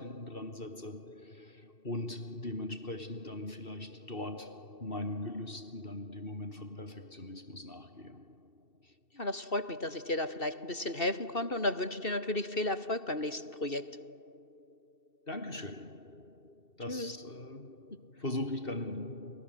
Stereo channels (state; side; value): late; right; 2.7 ms